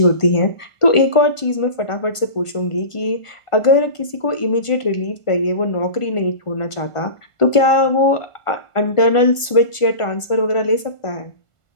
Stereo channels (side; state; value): right; late; 1.5 ms